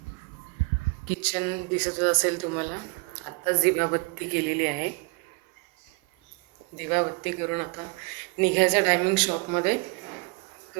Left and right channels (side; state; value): left; quieter; 30.9 dB